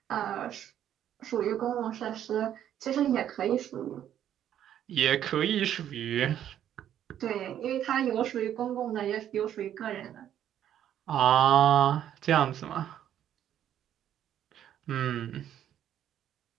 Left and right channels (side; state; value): left; quieter; 10.6 dB